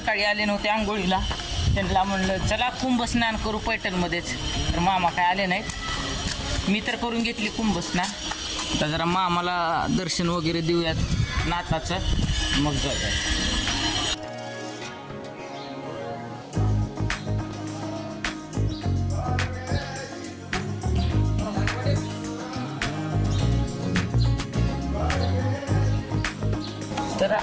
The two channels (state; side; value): identical; both; correlation 1.00